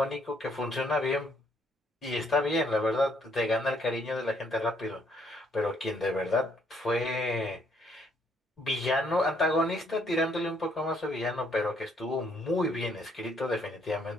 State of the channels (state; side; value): normal; both; correlation 0.68